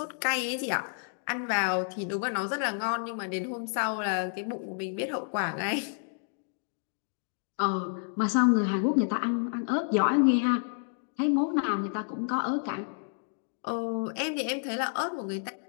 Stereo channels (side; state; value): right; silent; 58 dB below the other